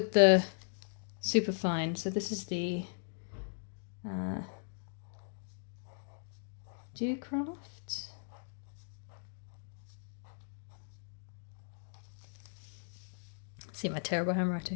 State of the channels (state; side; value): silent; right; digital silence